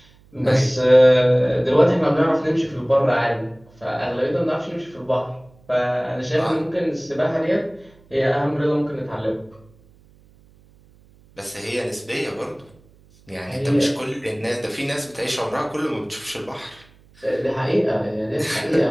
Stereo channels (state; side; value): noise; right; hum, 29 dB below the sound